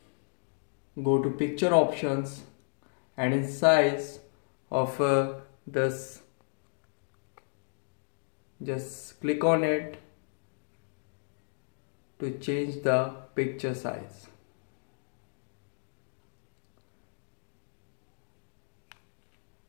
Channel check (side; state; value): right; silent; digital silence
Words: go to picture options, and in size of this just click on it to change the picture size.